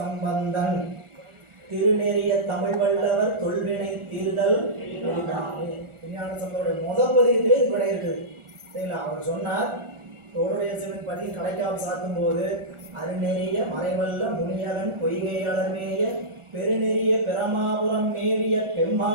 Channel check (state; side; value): late; left; 1.4 ms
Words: திருநெறிய தமிழ் வல்லவர் தொல்வினை தீர்தல் விஞ்ஞான சம்பந்தோடைய முதல் பதியத்திலே இது விடை இருக்குது சரிங்களா. அவர் சொன்னார், தோளுடைய சிவன் பதியின் கடைக்காப்பு சாத்தும் போது அருநெறிய மறைவல்ல முனியவன் பொய்கை அலர்மேய பெருநெறிய பெருமாபுரம் மேவிய